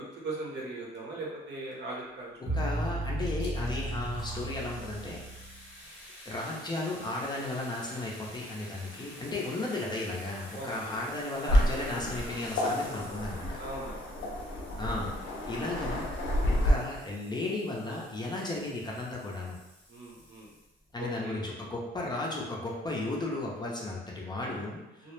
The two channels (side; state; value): both; normal; correlation 0.62